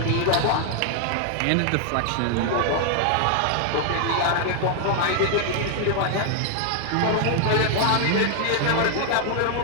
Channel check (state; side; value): different; both; correlation 0.00